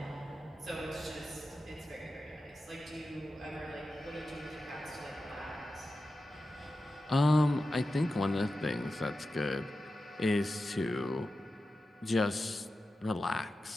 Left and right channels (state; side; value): normal; both; correlation 0.92